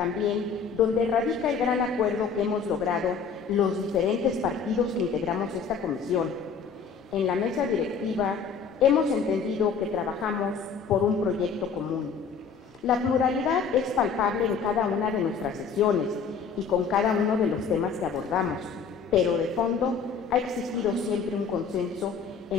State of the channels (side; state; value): right; quieter; 5.8 dB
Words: donde radica el gran acuerdo que hemos logrado los diferentes partidos que integramos esta comisión. En la mesa directiva hemos entendido que trabajamos por un proyecto común. La pluralidad es palpable en cada una de nuestras sesiones y con cada uno de los temas que abordamos, pero de fondo ha existido siempre un consenso